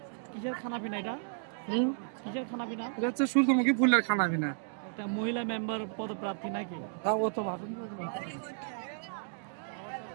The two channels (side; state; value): left; silent; digital silence